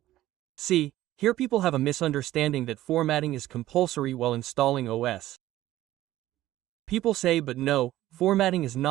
See, here people have a misunderstanding that formatting is compulsory while installing OS. People say, but no, formatting is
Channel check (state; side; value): quieter; left; 14.9 dB